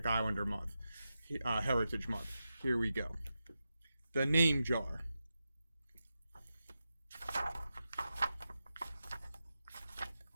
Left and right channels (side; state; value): both; inverted; correlation -0.90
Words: Islander month, Heritage Month. Here we go. The Name Jar.